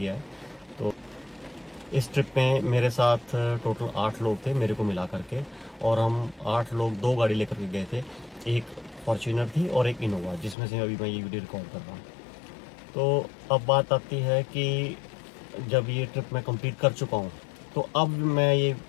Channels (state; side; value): drops out; right; at 10.6 s